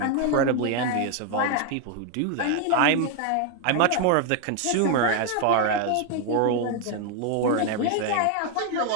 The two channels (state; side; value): different; both; correlation 0.01